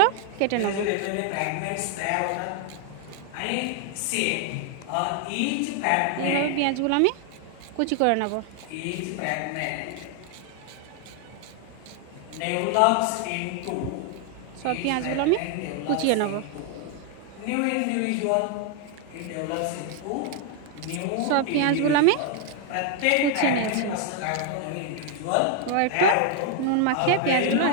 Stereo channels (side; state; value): both; different; correlation 0.00